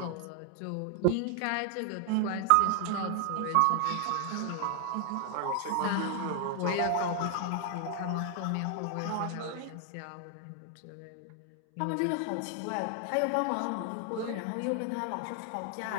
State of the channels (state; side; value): different; both; correlation 0.00